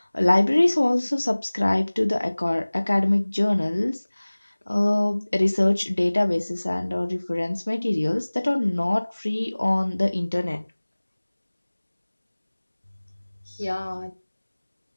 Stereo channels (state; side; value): inverted; both; correlation -1.00